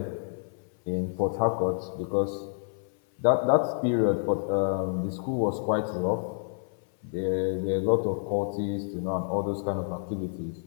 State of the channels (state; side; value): silent; right; 59 dB below the other